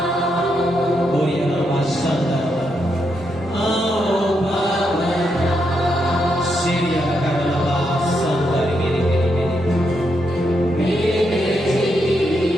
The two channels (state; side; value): normal; both; correlation 0.81